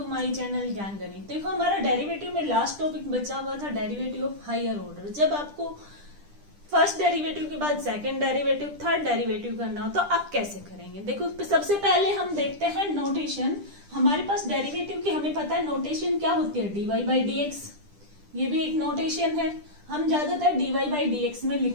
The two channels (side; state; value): left; late; 10 ms